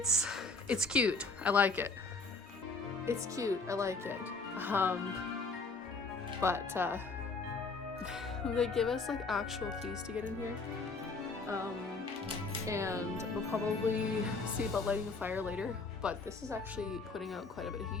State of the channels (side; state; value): right; quieter; 3.8 dB